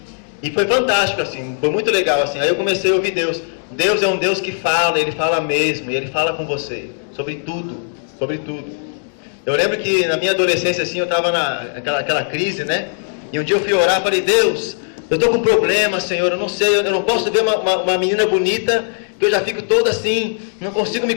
E foi fantástico, assim, foi muito legal, assim. Aí eu comecei a ouvir Deus. Deus é um Deus que fala, Ele fala mesmo, e Ele fala com você, sobre tudo, sobre tudo. Eu lembro que na minha adolescência, assim, eu estava naquela crise, né? E um dia eu fui orar, falei, Deus, eu estou com um problema, Senhor, eu não sei, eu não posso ver uma menina bonita, que eu já fico toda assim, não consigo me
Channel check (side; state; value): right; silent; digital silence